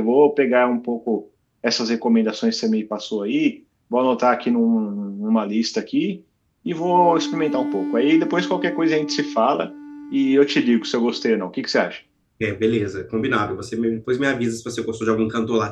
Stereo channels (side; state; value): both; identical; correlation 1.00